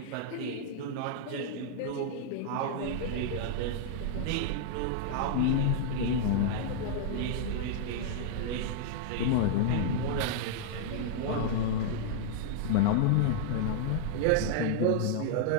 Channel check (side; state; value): both; different; correlation 0.00